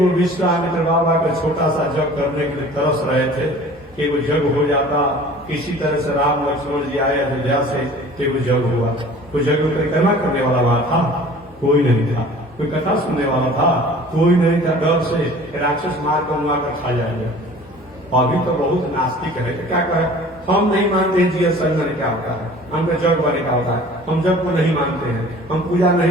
विश्वामित्र बाबा का छोटा सा जग करने के लिए तरस रहे थे कि वो जग हो जाता। किसी तरह से राम लक्ष्मण जी आए अयोध्या से, कि वो जग हुआ। कोई जग परिक्रमा करने वाला वहां था? कोई नहीं था। कोई कथा सुनने वाला था? कोई नहीं था। डर से राक्षस मार कर मुआ कर खा जाएंगे। अभी तो बहुत नास्तिक है, तो क्या कहे, हम नहीं मानते हैं जीवन संग बने क्या होता है, हमको जग बने क्या होता है, हम जग को नहीं मानते हैं, हम पूजा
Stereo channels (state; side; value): normal; both; correlation 0.46